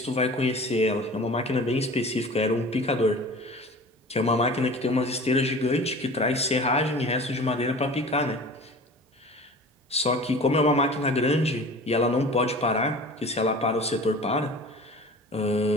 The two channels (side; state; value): both; normal; correlation 0.40